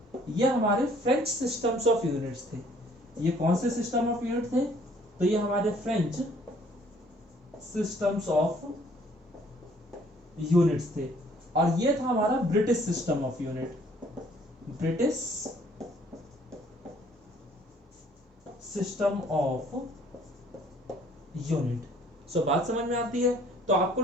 ये हमारे फ्रेंच सिस्टम्स ऑफ यूनिट्स थे। ये कौन से सिस्टम ऑफ यूनिट थे, तो ये हमारे फ्रेंच सिस्टम्स ऑफ यूनिट्स थे। और ये था हमारा British system of unit, British system of unit. So बात समझ में आती है। तो आपको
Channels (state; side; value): normal; both; correlation 0.59